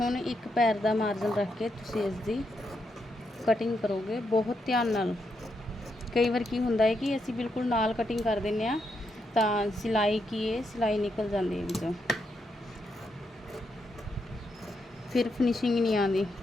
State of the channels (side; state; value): both; normal; correlation 0.81